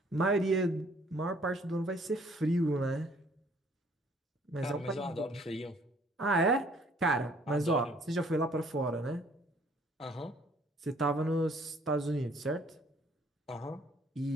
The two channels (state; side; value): normal; both; correlation 0.60